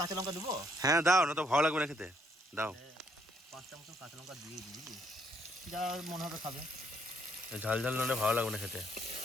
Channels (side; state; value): both; normal; correlation 0.71